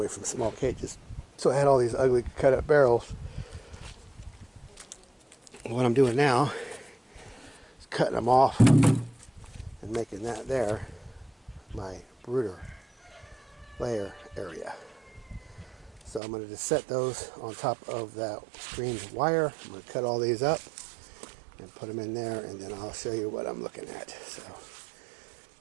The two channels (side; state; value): left; drops out; at 16.2 s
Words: from small cages. So I had all these ugly cut up barrels. What I'm doing now is cutting them off and making that there my brooder layer area. So I'm going to just set those on top of that screened wire. I'm going to cut all these up and put them in there, and then I'll show you what I'm looking at. So